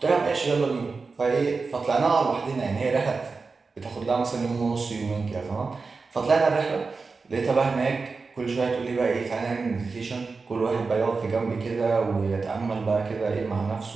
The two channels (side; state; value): left; quieter; 4.4 dB